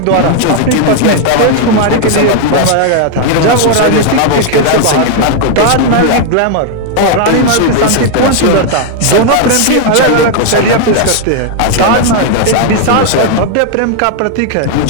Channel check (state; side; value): different; both; correlation 0.00